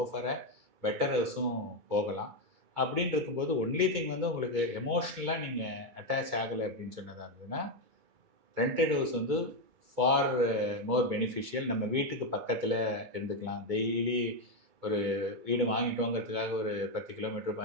for a better ஹவுஸும் போகலாம். அப்படின்னு இருக்கும்போது ஒன்லி திங் வந்து உங்களுக்கு எமோஷ்னலாக நீங்கள் அட்டாச் ஆகலை அப்படின்னு சொன்னதாக இருந்ததுன்னா ரெண்டட் ஹவுஸ் வந்து ஃபார் மோர் பெனிஃபிஷியல். நம்ம வீட்டுக்கு பக்கத்தில் இருந்துக்கலாம். டெய்லி ஒரு வீடு வாங்கிட்டோங்கிறதுக்காக ஒரு 10 கிலோமீட்டர்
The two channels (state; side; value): late; left; 2.3 ms